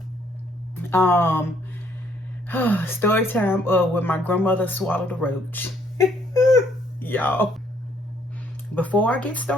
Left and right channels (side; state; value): both; normal; correlation 0.66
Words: story time with my grandmother swallowed a roach. Y'all, before I get